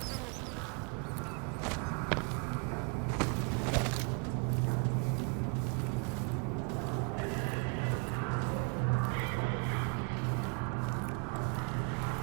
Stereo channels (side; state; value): left; quieter; 34.8 dB